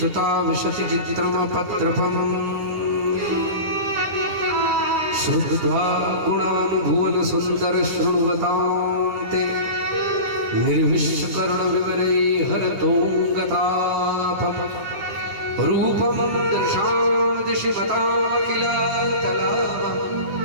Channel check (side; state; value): left; late; 9.6 ms